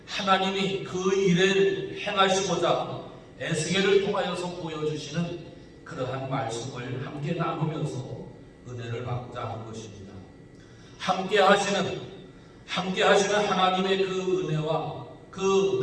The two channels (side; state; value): both; identical; correlation 1.00